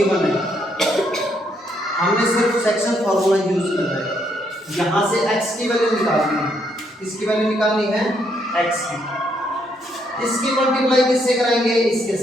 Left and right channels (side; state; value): both; normal; correlation 0.73